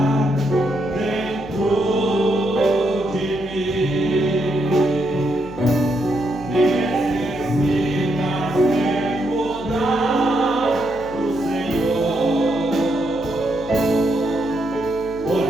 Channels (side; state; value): left; noise; hum, 18 dB below the sound